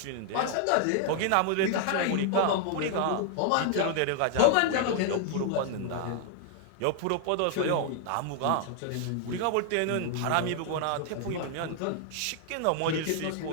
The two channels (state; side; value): different; both; correlation 0.00